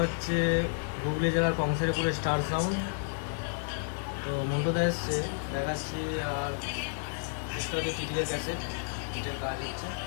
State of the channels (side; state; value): right; silent; digital silence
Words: হচ্ছে হুগলি জেলার কংসারীপুরের স্টার সাউন্ড। তো মন্টুদা এসছে দেখাচ্ছি, আর এটা হচ্ছে টিটিএর ক্যাসেট, বিটের কাজ হচ্ছে।